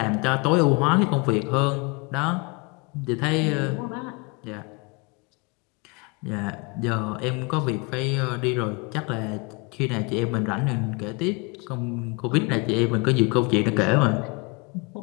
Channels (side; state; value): right; quieter; 29.3 dB